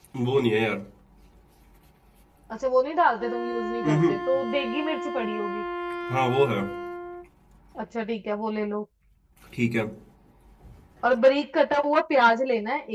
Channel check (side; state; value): both; identical; correlation 1.00